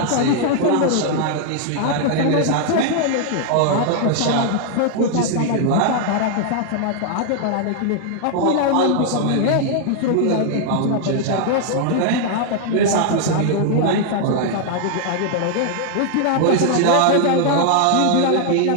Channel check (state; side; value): different; both; correlation 0.00